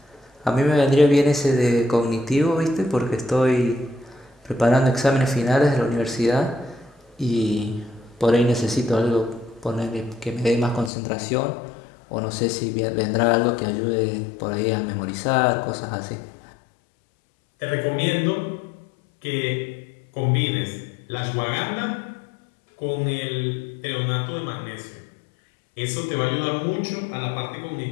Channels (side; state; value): right; drops out; at 10.9 s